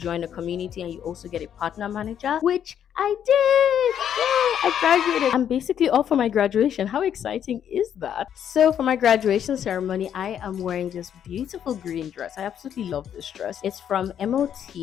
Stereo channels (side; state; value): right; quieter; 9.2 dB